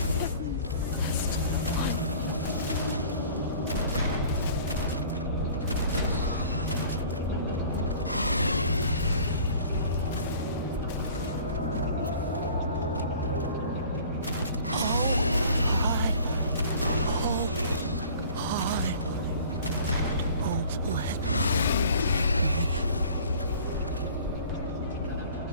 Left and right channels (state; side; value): inverted; both; correlation -0.48